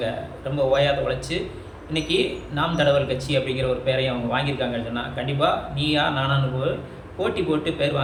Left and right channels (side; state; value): both; identical; correlation 1.00